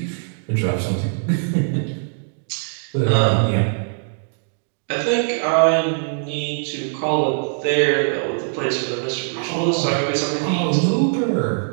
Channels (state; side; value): silent; left; digital silence